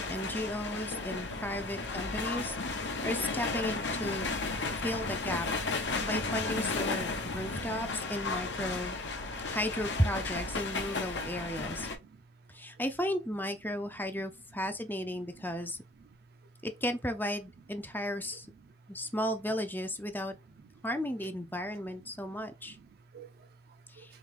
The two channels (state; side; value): normal; both; correlation 0.49